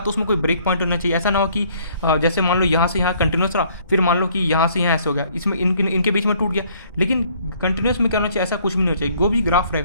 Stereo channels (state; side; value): inverted; both; correlation -0.61